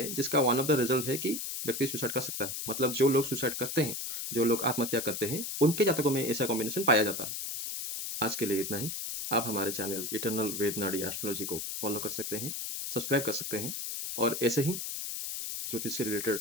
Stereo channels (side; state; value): left; noise; hiss, 5 dB below the sound